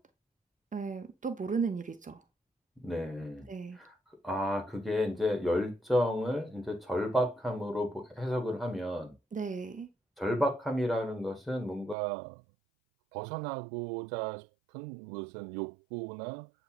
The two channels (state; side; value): drops out; left; at 12.0 s